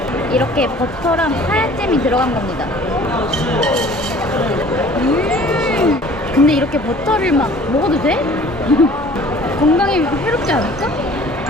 이렇게 버터랑 카야잼이 들어간 겁니다. 근데 이렇게 버터를 막 먹어도 돼? 건강에 해롭지 않을까?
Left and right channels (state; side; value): normal; both; correlation 0.49